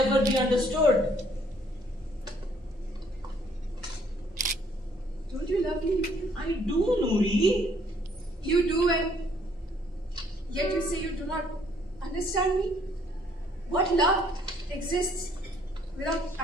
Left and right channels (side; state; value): both; normal; correlation 0.64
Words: be understood. Don't you love me? I do, Nuri. You do, and yet you say you do not understand me? What love exists without